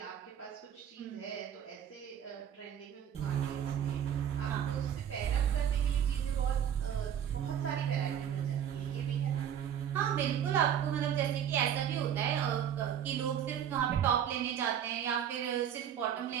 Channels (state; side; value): quieter; left; 9.3 dB